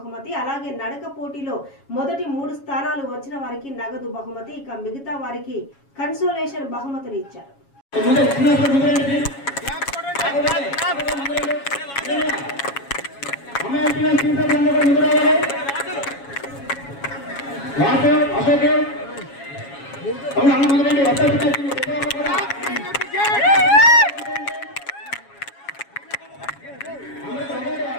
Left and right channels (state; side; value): late; right; 7.2 ms